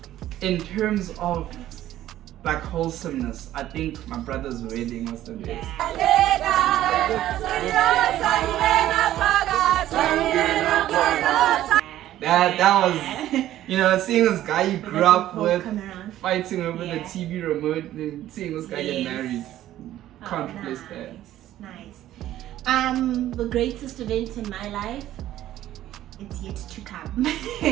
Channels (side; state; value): left; quieter; 13.3 dB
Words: In terms of like wholesomeness, I think my brother's wedding was the best. That was, you know, seeing this guy you grew up with fighting over the TV remote and seeing this guy get married. Can't replace that. Nice. The greatest event in my life it's yet to come.